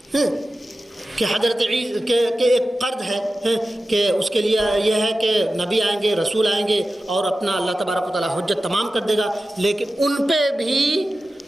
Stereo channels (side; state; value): both; normal; correlation 0.94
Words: ہے کہ حضرت عیسیٰ کے ایک قرض ہے کہ اس کے لیے یہ ہے کہ نبی آئیں گے، رسول آئیں گے، اور اپنا اللہ تبارک و تعالیٰ حجت تمام کر دے گا۔ لیکن ان پہ بھی